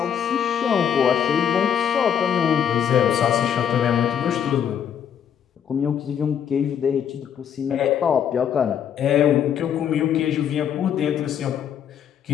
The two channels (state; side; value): quieter; right; 8.7 dB